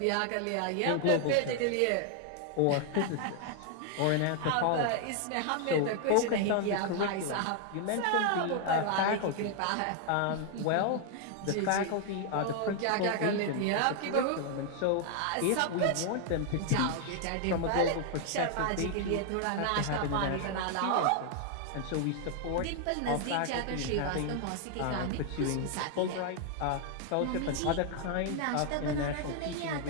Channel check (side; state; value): both; different; correlation 0.00